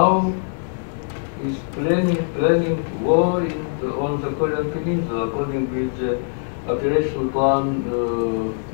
is planning war on the Korean Peninsula according with the operational plan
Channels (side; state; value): right; silent; digital silence